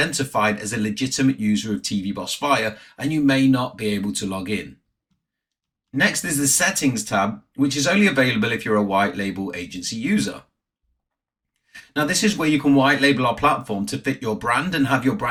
as a legitimate user of TV Boss Fire, and you may not be able to log in. Next is the Settings tab, which is only available if you're a white label agency user. Now, this is where you can white label our platform to fit your brand and have your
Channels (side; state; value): both; identical; correlation 1.00